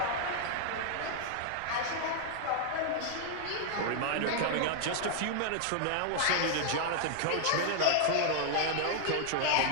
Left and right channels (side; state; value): both; different; correlation -0.01